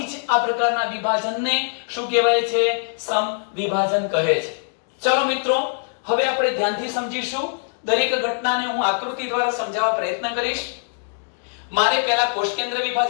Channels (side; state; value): right; silent; digital silence